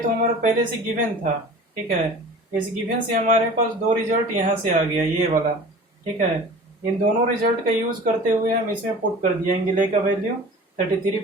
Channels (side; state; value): both; normal; correlation 0.41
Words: हमारा पहले से गिवन था, ठीक है, इस गिवन से हमारे पास दो रिजल्ट यहाँ से आ गया, ये वाला, ठीक है। इन दोनों रिजल्ट का यूज करते हुए हम इसमें पुट कर दिया एंगल ए का वैल्यू 33